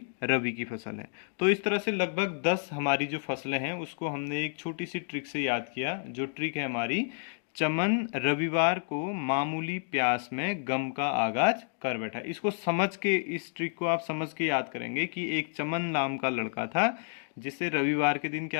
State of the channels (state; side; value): silent; right; digital silence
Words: रबी की फसल है। तो इस तरह से लगभग 10 हमारी जो फसलें हैं उसको हमने एक छोटी सी ट्रिक से याद किया। जो ट्रिक है हमारी, चमन रविवार को मामूली प्यास में गम का आगाज कर बैठा। इसको समझ के, इस ट्रिक को आप समझ के याद करेंगे कि एक चमन नाम का लड़का था जिसे रविवार के दिन